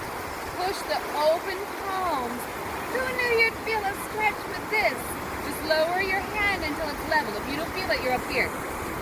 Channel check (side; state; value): both; identical; correlation 1.00